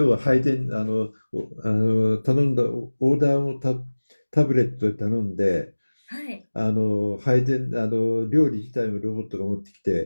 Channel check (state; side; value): inverted; both; correlation -1.00